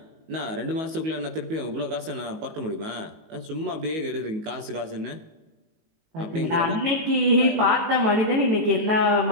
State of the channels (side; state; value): left; late; 19 ms